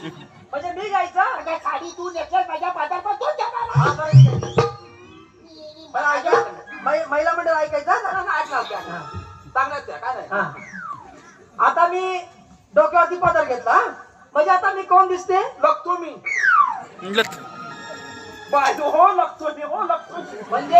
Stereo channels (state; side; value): identical; both; correlation 1.00